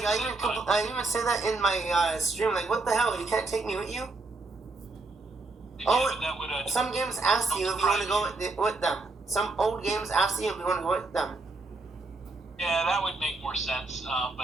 I even say that in my stream, like, what the hell? You can't take me with you? Yeah, that would, some games ask you if you want to go with them. Some old games ask you if you want to go with them. Yeah, that would make more sense.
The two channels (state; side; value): quieter; left; 3.5 dB